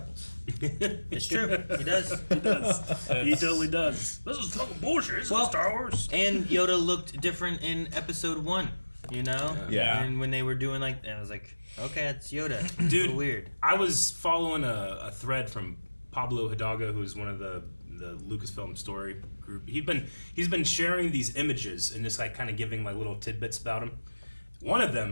It's true, he does. he totally does. This is fucking bullshit. This is Star Wars. And Yoda looked different in Episode 1. You know? Yeah. And when they were doing like, I was like, okay, it's Yoda. It's Dude, a little weird. I was following a thread from Pablo Hidalgo, who's one of the Lucasfilm story group. He's been sharing these images and just like kind of giving my little tidbits about him. One of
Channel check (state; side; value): inverted; both; correlation -1.00